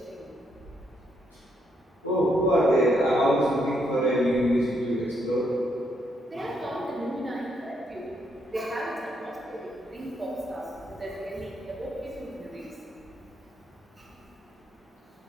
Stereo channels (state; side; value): normal; both; correlation 0.76